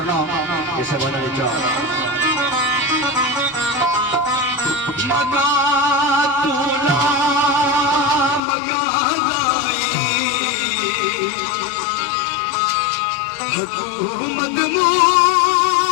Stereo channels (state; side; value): drops out; right; at 8.4 s